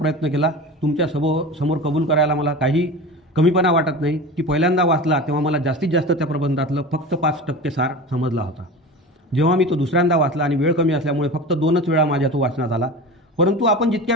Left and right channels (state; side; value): normal; both; correlation 0.31